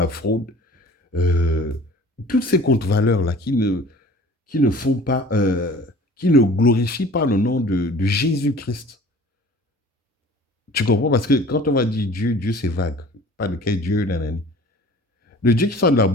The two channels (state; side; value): normal; both; correlation 0.47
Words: fraude. euh, Toutes ces contre-valeurs-là qui ne font pas, qui ne glorifient pas le nom de Jésus-Christ. Tu comprends? Parce que quand on va dire Dieu, Dieu c'est vague. Pas de quel Dieu, nanani. Le Dieu qui sort de la